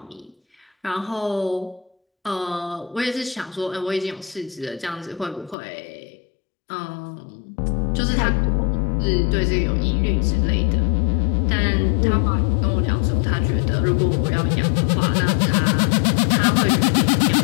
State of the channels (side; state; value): right; drops out; at 5.6 s